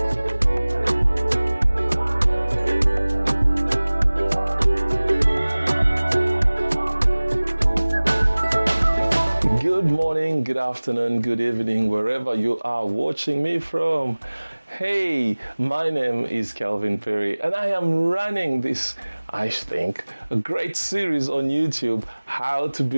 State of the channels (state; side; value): inverted; both; correlation -1.00